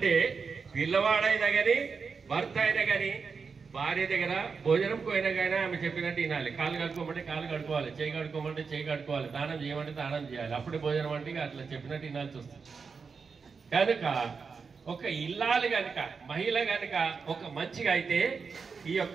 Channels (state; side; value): quieter; left; 5.3 dB